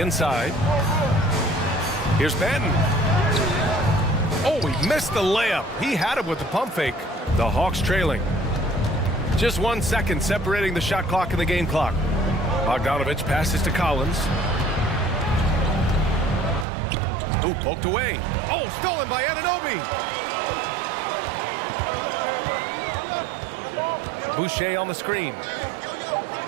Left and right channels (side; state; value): left; drops out; at 16.7 s